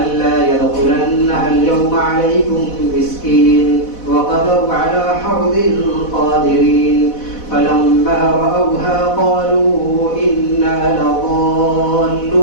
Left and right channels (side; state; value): right; late; 4.1 ms